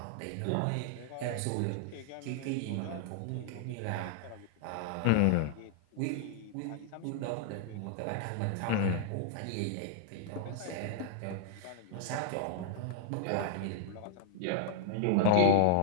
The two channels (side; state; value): both; different; correlation 0.00